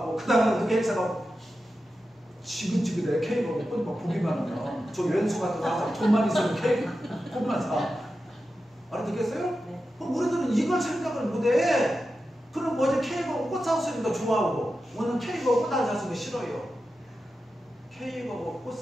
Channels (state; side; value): normal; both; correlation 0.91